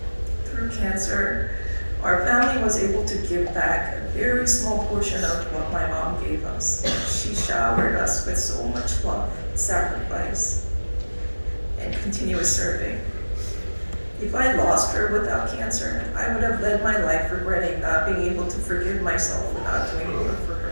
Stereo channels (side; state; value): both; inverted; correlation -1.00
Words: Through cancer, our family was able to give back a very small portion of what my mom gave us. She showered us with so much love, sacrifice, and continuous serving. If I lost her without cancer, I would have led my life regretting not being able to forgive myself for not doing more for her.